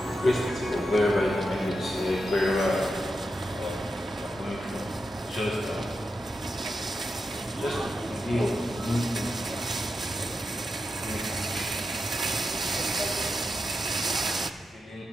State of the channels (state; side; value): normal; both; correlation 0.88